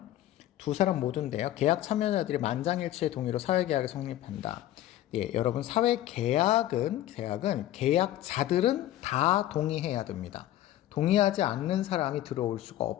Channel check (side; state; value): right; quieter; 13.5 dB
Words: 두 사람 모두인데요. 계약 참여자들이 만장일치의 동의로 사회계약이 성립한다. 예, 여러분 사회계약은 계약자들은 다 동의해야 됩니다. 동의하지 않는 사람이 들어올 수가